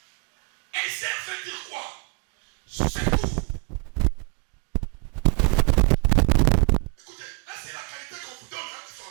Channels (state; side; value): quieter; left; 34.8 dB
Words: Essaie veut dire quoi? Secours. Écoutez, là c'est la qualité qu'on vous donne, hein, les